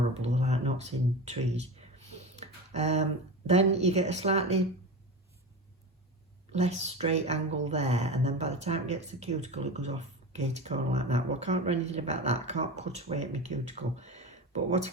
like knots in trees. Then you get a slightly less straight angle there, and then by the time it gets the cuticle, it goes off gator corner like that. Well, I can't do anything about that. I can't cut away at my cuticle. But what I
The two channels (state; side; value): normal; both; correlation 0.26